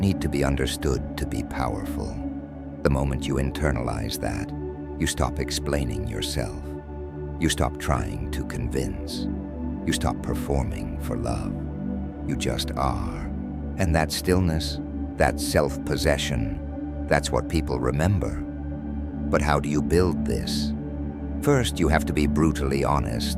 to be understood to be powerful. The moment you internalize that, you stop explaining yourself. You stop trying to convince. You stop performing for love. You just are. And that stillness, that self-possession, that's what people remember. But how do you build this? First, you have to be brutally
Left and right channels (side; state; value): both; identical; correlation 1.00